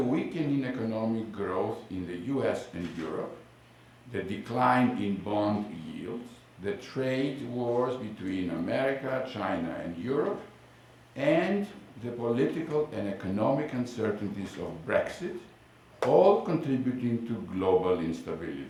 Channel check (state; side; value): identical; both; correlation 1.00